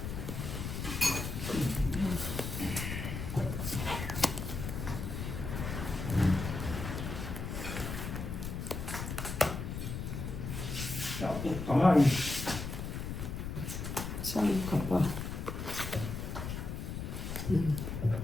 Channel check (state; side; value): noise; left; rumble, 5 dB below the sound